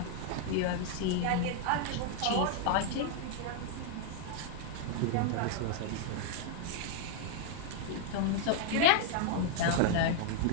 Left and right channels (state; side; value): different; both; correlation 0.00